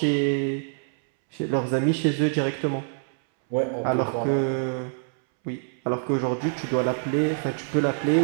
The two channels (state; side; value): silent; left; 61 dB below the other